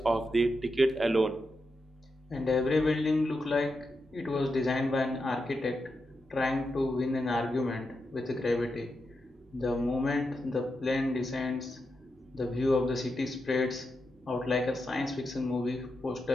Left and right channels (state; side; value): normal; both; correlation 0.87